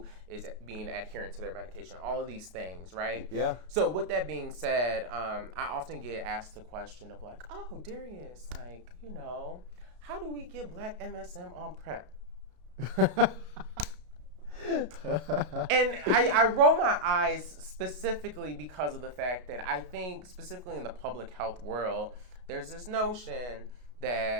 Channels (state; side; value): late; left; 33 ms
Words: is being adherent to their medication. All of these things, right? Yeah. So with that being said, I often get asked the question of like, oh, Derrius, like, you know, how do we get Black MSM on PrEP? And I roll my eyes specifically because of the fact that I think specifically in the public health world, there's this notion